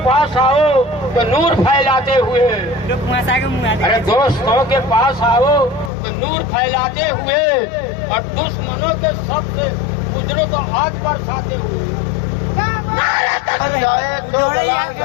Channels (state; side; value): drops out; right; at 5.9 s